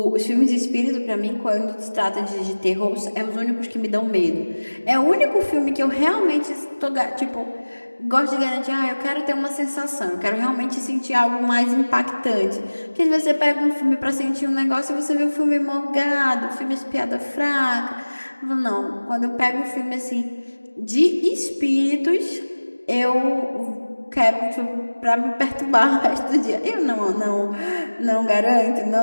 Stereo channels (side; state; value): both; inverted; correlation -1.00